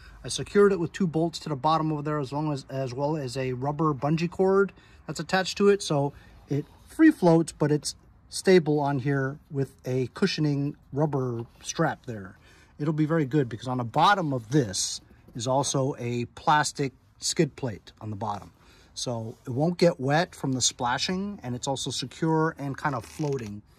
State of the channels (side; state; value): both; identical; correlation 1.00